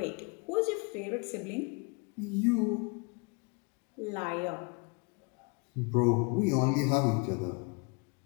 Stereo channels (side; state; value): right; quieter; 31.5 dB